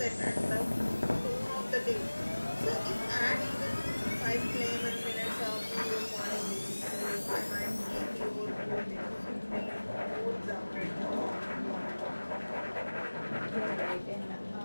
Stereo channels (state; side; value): inverted; both; correlation -1.00